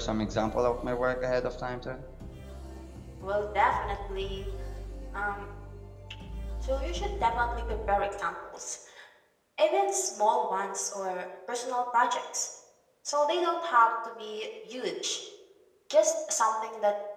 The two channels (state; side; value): identical; both; correlation 1.00